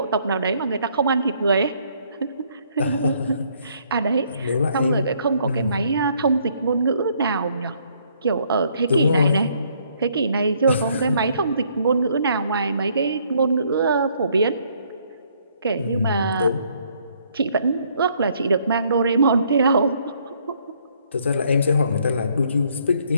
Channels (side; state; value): both; inverted; correlation -0.67